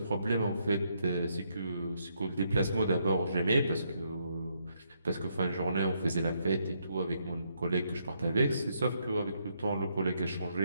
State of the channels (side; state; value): both; inverted; correlation -0.76